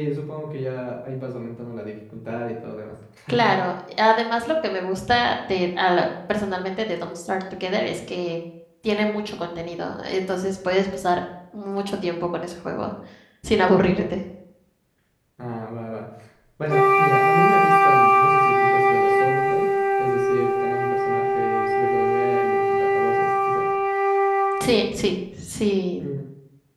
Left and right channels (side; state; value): both; identical; correlation 1.00